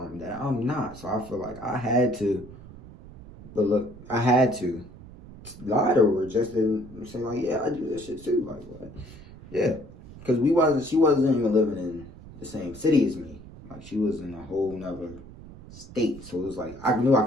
that I'm not. So I feel like I had to. But look, I had to. lie to her, just to say like, yeah, I do this shit too. Like what? Yeah, because she wasn't even living in the same city as me. Like she was in a whole nother state, so it was like I knew I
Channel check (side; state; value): right; noise; rumble, 17 dB below the sound